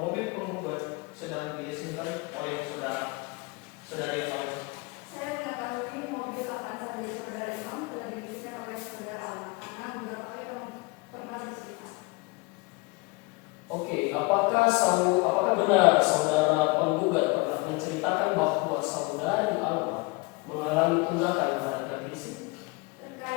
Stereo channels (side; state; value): right; quieter; 26.2 dB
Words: mobil penggugat sedang dileasingkan oleh saudara yang lain? Saya mengetahui mobil Avanza dari saudara Imam telah diberikan oleh saudara Alma karena beberapa kali pernah bercerita. Oke, apakah benar saudara penggugat pernah menceritakan bahwa saudari Alma mengalami tunggakan pada pihak leasing?